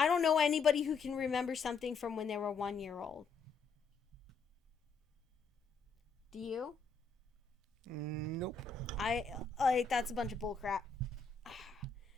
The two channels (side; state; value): right; quieter; 4.8 dB